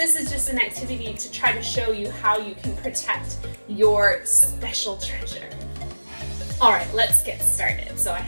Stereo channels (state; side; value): inverted; both; correlation -1.00